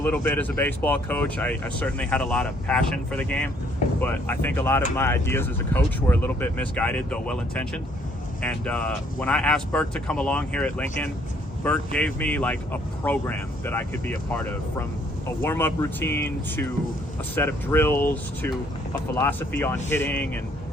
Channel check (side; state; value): both; normal; correlation 0.65